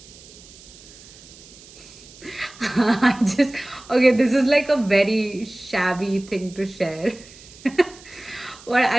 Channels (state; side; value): noise; right; hiss, 21 dB below the sound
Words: I just, okay, this is like a very shabby thing to share. Well,